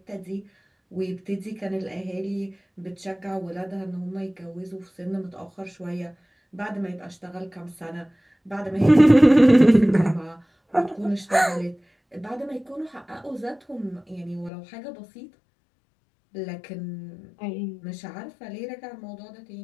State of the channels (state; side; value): drops out; right; at 14.5 s